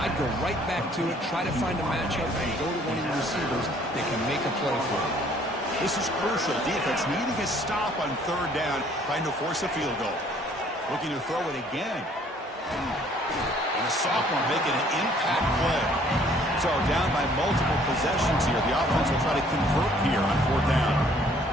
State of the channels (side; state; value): both; normal; correlation 0.59